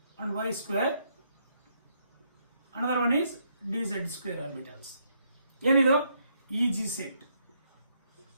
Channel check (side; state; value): both; inverted; correlation -0.74